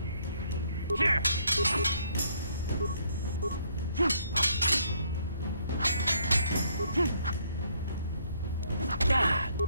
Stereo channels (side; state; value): both; inverted; correlation -0.68